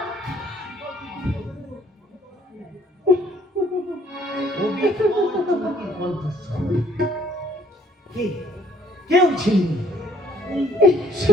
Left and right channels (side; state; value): both; normal; correlation 0.62